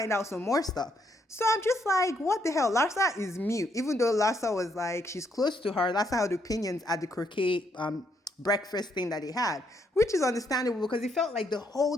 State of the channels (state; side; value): normal; both; correlation 0.74